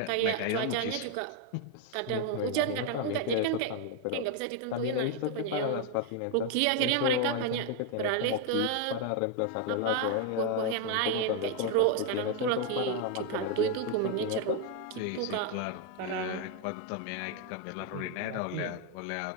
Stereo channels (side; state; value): both; different; correlation 0.01